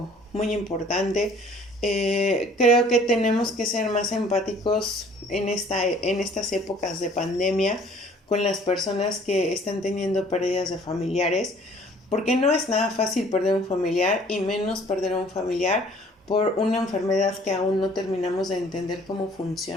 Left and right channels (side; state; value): both; normal; correlation 0.55